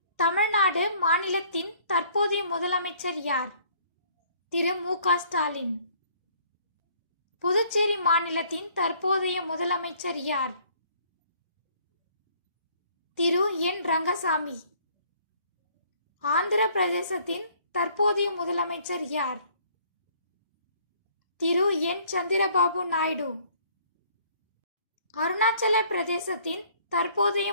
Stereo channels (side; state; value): both; inverted; correlation -0.59